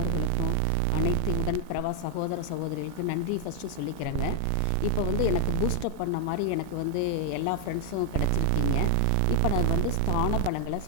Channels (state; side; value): different; both; correlation 0.00